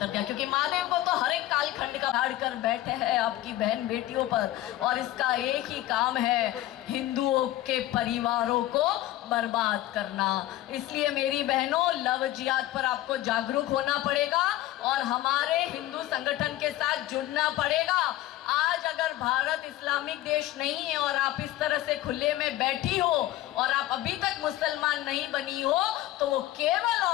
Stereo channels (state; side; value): quieter; right; 15.2 dB